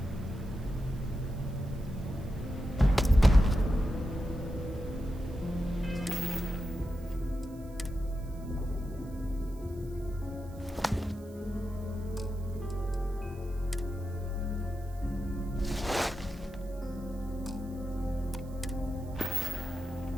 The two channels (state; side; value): noise; right; hiss, 25 dB below the sound